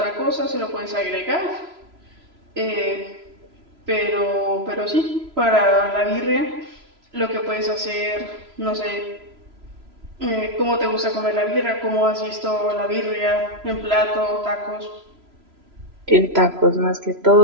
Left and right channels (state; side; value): late; left; 3.0 ms